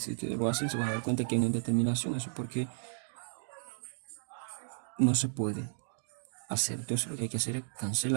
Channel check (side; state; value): left; silent; digital silence